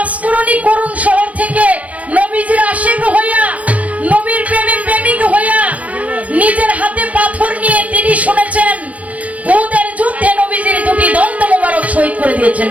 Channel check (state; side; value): late; left; 0.068 ms